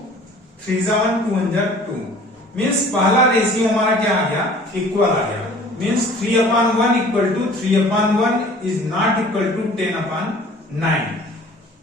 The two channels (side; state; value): both; normal; correlation 0.49